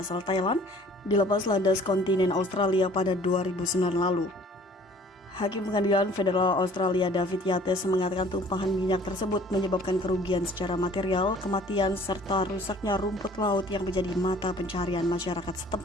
Thailand, di lepas landas kontinen Australia pada 2009 lalu. Hakim Pengadilan Federal Australia David Yates mengatakan tumpahan minyak tersebut menyebabkan kerugian secara material, kematian, serta rusaknya rumput laut yang menjadi mata pencaharian masyarakat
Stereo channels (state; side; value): normal; both; correlation 0.52